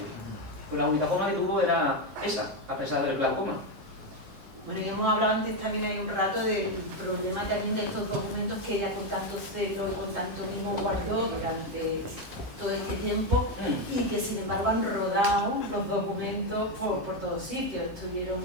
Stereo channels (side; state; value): left; late; 7.6 ms